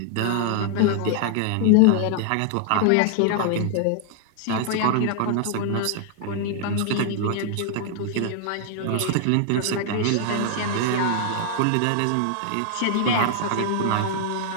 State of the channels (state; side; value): different; both; correlation 0.00